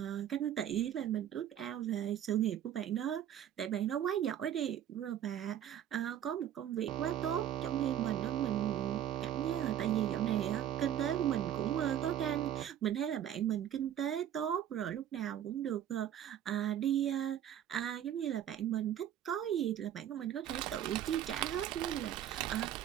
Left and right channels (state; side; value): quieter; left; 10.6 dB